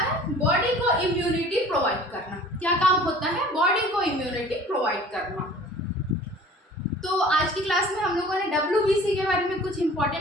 है, बॉडी को इम्यूनिटी प्रोवाइड करना। क्या काम होता है, बॉडी को इम्यूनिटी प्रोवाइड करना। तो आज की क्लास में हम लोगों ने WBC के बारे में कुछ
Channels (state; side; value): normal; both; correlation 0.47